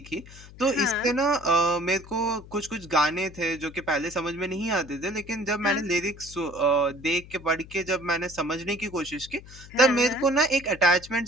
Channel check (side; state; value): left; noise; hum, 19 dB below the sound